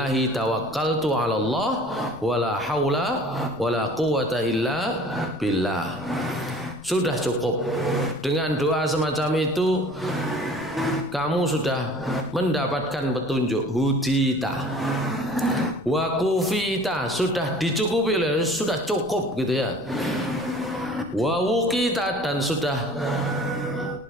tawakkaltu 'ala Allah wala haula wala quwwata illa billah. Sudah cukup. Dengan doa semacam itu kamu sudah mendapatkan petunjuk, hudita wa kufita, sudah dicukupi, sudah cukup gitu ya. Wa wuqita, dan sudah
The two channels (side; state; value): left; noise; rumble, 25 dB below the sound